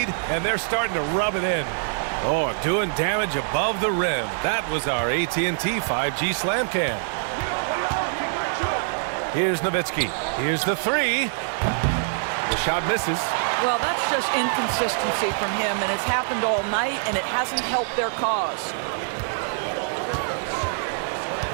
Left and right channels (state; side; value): silent; left; digital silence